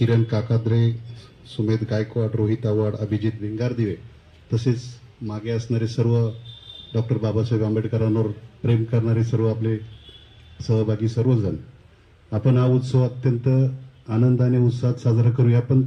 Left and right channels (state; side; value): identical; both; correlation 1.00